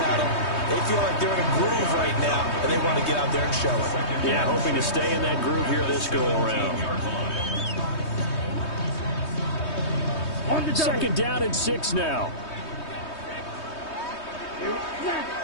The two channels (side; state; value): right; late; 3.2 ms